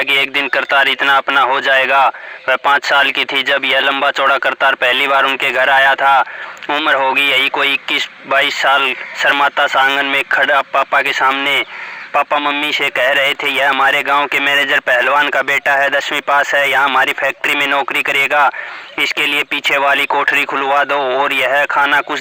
कि एक दिन करतार इतना अपना हो जाएगा। वह 5 साल की थी जब यह लंबा चौड़ा करतार पहली बार उनके घर आया था। उम्र होगी यही कोई 21-22 साल। शर्माता सा आंगन में खड़ा पापा के सामने पापा मम्मी से कह रहे थे, यह हमारे गांव के मैनेजर पहलवान का बेटा है, 10वीं पास है, यहाँ हमारी फैक्ट्री में नौकरी करेगा। इसके लिए पीछे वाली कोठरी खुलवा दो और यह खाना कुछ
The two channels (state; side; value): identical; both; correlation 1.00